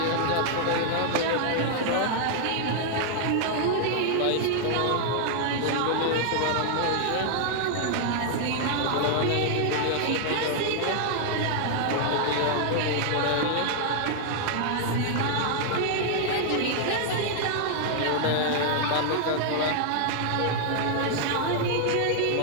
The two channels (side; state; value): both; different; correlation 0.00